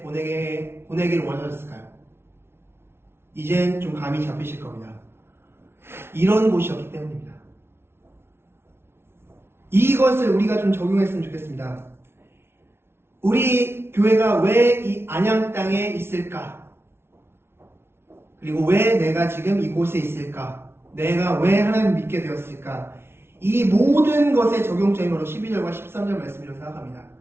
원하셨을까요? 이젠 좀 감이 잡히실 겁니다. 이런 곳이었기 때문입니다. 이것을 우리가 좀 적용했으면 좋겠습니다. 우리 교회가 왜 이 안양 땅에 있을까? 그리고 왜 내가 지금 이곳에 있을까? 내가 왜 하나님을 믿게 되었을까? 이 모든 것의 적용점이 바로 12절과 13절 말씀이라고 생각합니다.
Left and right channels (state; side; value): late; left; 0.12 ms